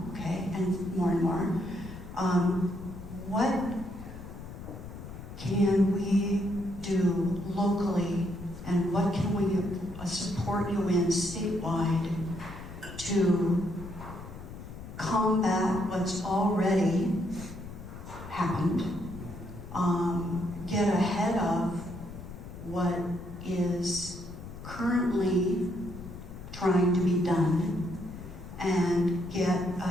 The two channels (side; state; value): left; noise; rumble, 12 dB below the sound